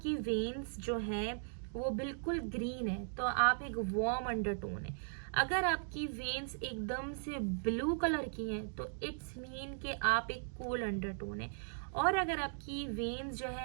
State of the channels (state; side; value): silent; left; digital silence